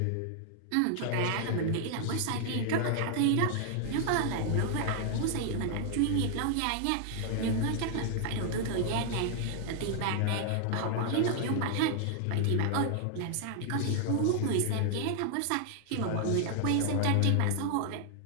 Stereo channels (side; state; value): both; different; correlation 0.00